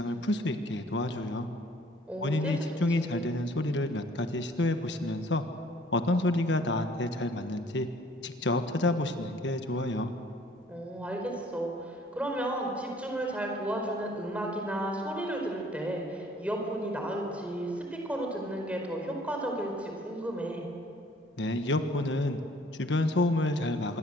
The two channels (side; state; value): both; normal; correlation 0.57